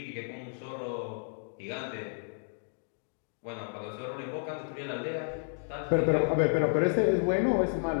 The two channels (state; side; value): silent; right; digital silence